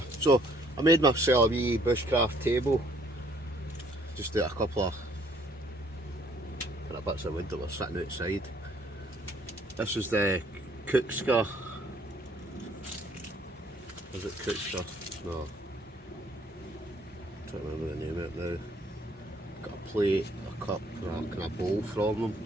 So I made myself a wee bushcraft table. Just out a couple of bits of wood that were sitting outside. This is the cookset. Is it cookset? No. I'm trying to remember the name of it now. Got a plate, a cup, and a kind of bowl from them.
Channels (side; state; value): both; normal; correlation 0.63